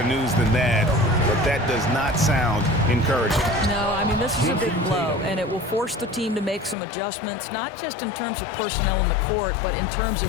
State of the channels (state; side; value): drops out; right; at 6.8 s